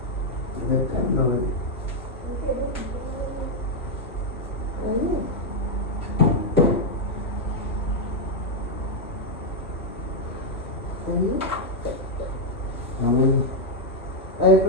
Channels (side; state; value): both; normal; correlation 0.00